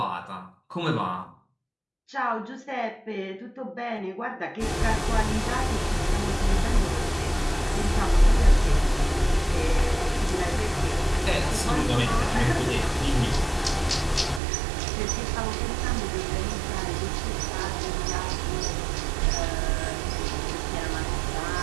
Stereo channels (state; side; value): drops out; left; at 14.4 s